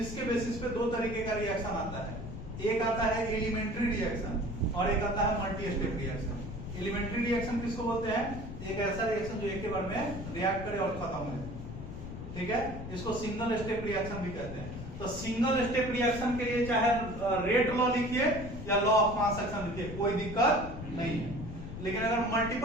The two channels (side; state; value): left; noise; rumble, 9 dB below the sound